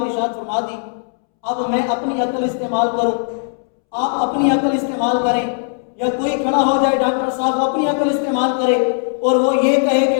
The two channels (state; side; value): silent; right; 67 dB below the other